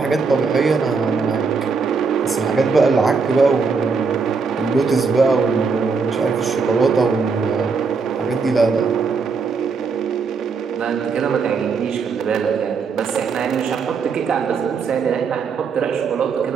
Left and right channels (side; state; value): left; quieter; 5.1 dB